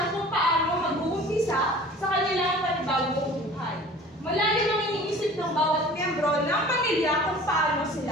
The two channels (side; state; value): both; normal; correlation 0.45